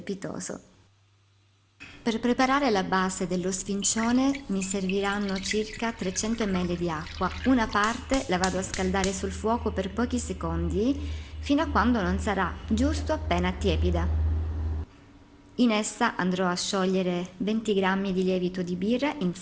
Per preparare la base dello sfincione mi serviranno circa 300 ml di acqua. Una parte la vado a scaldare sul fuoco per pochi secondi fino a quando non sarà giusto appena tiepida. In essa andrò a sciogliere 20 g di lievito di birra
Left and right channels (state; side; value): identical; both; correlation 1.00